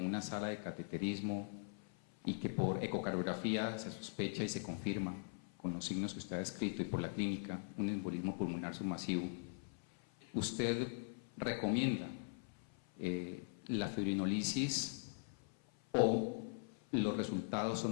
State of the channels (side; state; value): right; silent; 50 dB below the other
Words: sala de cateterismo y que por ecocardiografía se sospecha y se confirma con los signos que usted ha descrito y por la clínica un embolismo pulmonar submasivo, ¿usted recomienda la fibrinolisis o los resultados